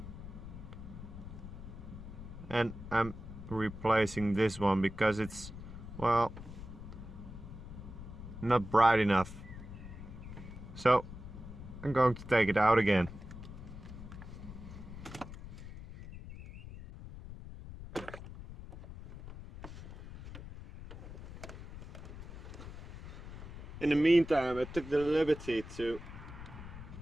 And I'm replacing this one because it's, well, not bright enough. So I'm going to take it out again. In the meantime, I took the liberty to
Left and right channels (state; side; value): noise; left; rumble, 12 dB below the sound